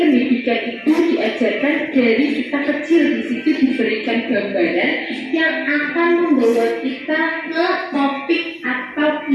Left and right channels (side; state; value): both; identical; correlation 1.00